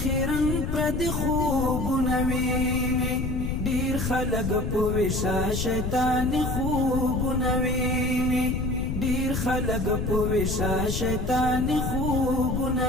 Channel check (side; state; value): left; noise; rumble, 2 dB below the sound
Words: خیرن پر د خوبونه ویني ډیر خلق په وشا شیطان خوبونه ویني ډیر خلق په وشا شیطان خوبونه